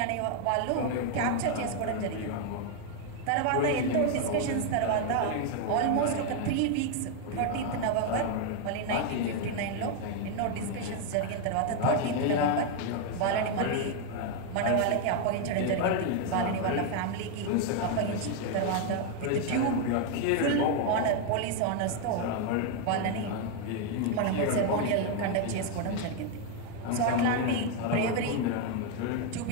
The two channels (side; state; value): both; different; correlation 0.01